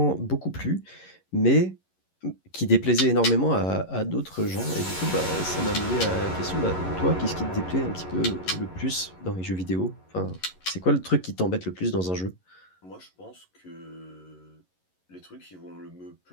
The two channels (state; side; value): late; right; 11 ms